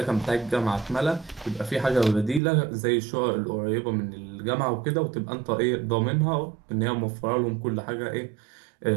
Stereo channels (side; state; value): left; drops out; at 2.4 s